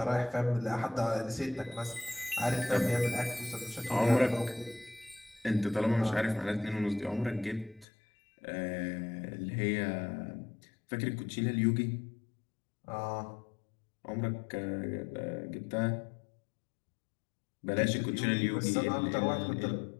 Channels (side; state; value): right; drops out; at 7.9 s